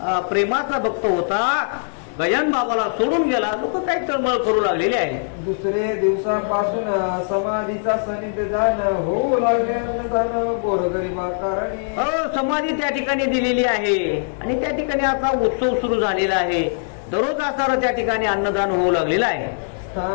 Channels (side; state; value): right; silent; digital silence